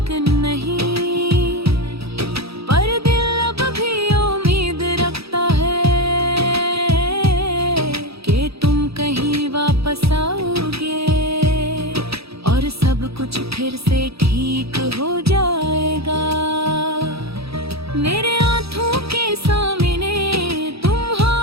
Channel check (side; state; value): left; late; 0.77 ms